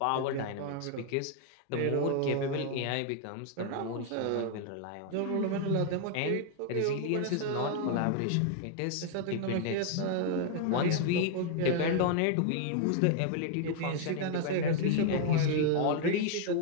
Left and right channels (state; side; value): different; both; correlation 0.00